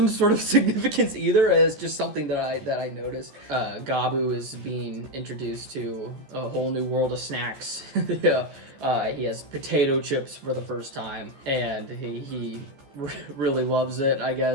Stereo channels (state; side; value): late; left; 14 ms